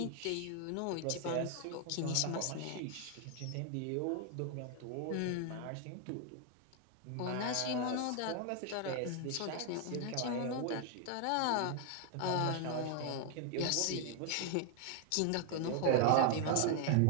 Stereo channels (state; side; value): different; both; correlation 0.00